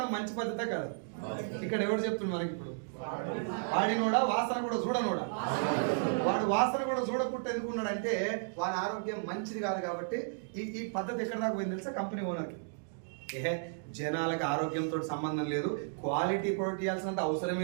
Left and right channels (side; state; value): left; silent; digital silence